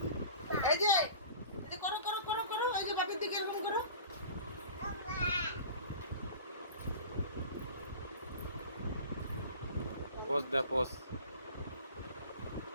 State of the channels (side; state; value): both; inverted; correlation -0.40